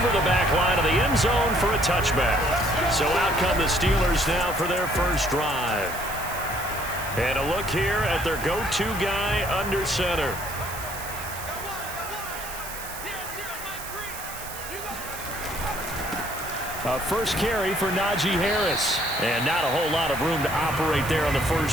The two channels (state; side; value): noise; right; hiss, 11 dB below the sound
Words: the back line of the end zone for a touchback. So out come the Steelers now for their first drive. And a look here at their go-to guy under center. A first carry for Najee Harris. And not a whole lot of room to operate there on the